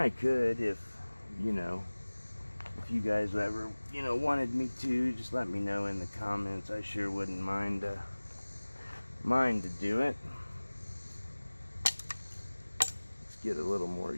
could if, you know, if you guys ever, you know, wanted me to, just let me know in the comments. I sure wouldn't mind to do it. Let's get a little more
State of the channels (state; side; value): inverted; both; correlation -1.00